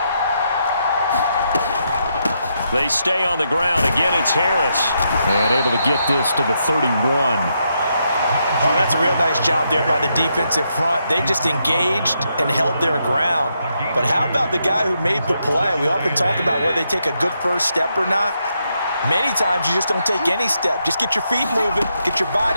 They stay on the ground. Again, it's Harris. And able to get this to the 31. Oh, that's a real nice job there by the defensive front. They just engaged and held their ground. But how about the guy who made the play? We often talk about whether they take a good first step or not. Many times you just don't take any step. Just get your feet moving, get your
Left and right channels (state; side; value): inverted; both; correlation -0.80